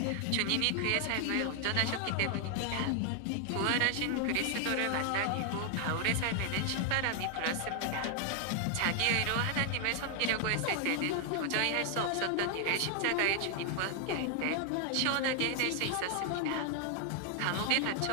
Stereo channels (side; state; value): both; different; correlation 0.00